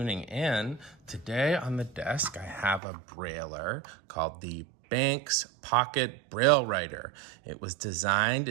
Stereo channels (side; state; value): left; drops out; at 2.8 s